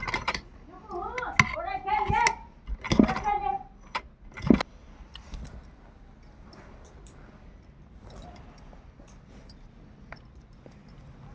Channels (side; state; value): both; identical; correlation 1.00